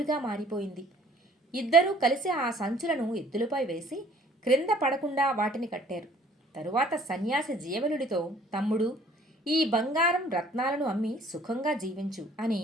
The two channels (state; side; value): normal; both; correlation 0.56